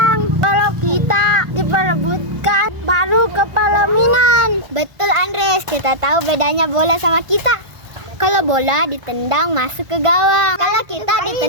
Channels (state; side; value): late; left; 1.5 ms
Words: Kalau kita diperebutkan, baru kepala minan. Betul Andres, kita tahu bedanya bola sama kita. Kalau bola ditendang masuk ke gawang. Kalau kita